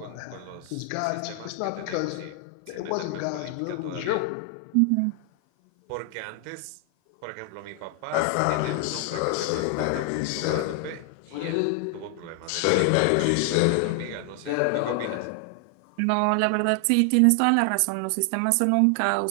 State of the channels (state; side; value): different; both; correlation 0.00